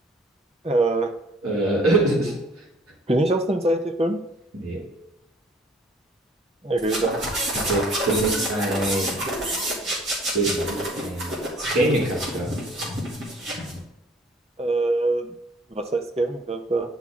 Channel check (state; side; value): normal; both; correlation 0.56